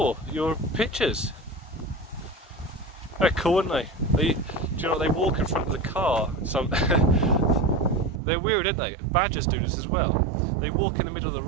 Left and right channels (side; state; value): left; drops out; at 8.2 s